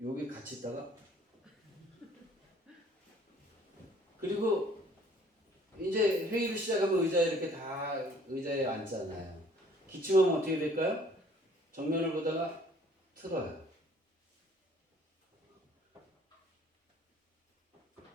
여기 같이 있다가 그리고 이제 회의를 시작하면 의자에 이렇게 다 의자에 앉잖아요. 기침하면 어떻게 될까요? 정면을 보다가 틀어요.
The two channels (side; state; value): both; normal; correlation 0.57